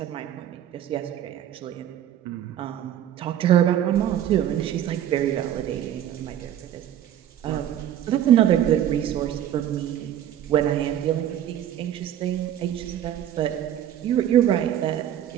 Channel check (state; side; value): quieter; left; 11.0 dB